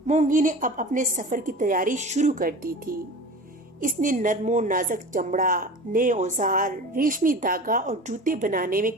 मोंगी ने अब अपने सफर की तैयारी शुरू कर दी थी। इसने नरमो नाजुक चमड़ा, नए औजार, रेशमी धागा और जूते बनाने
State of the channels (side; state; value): both; normal; correlation 0.36